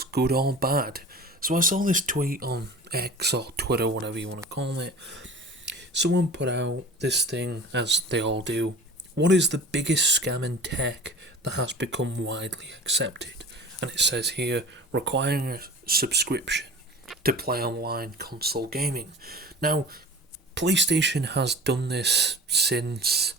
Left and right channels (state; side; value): normal; both; correlation 0.40